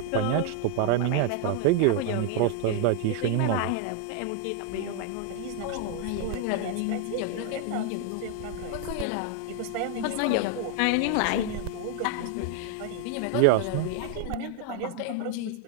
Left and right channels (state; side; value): different; both; correlation 0.00